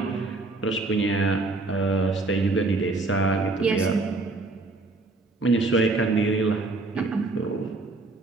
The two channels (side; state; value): left; quieter; 3.4 dB